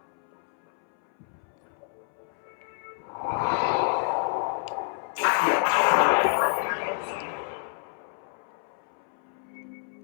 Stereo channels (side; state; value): right; silent; 59 dB below the other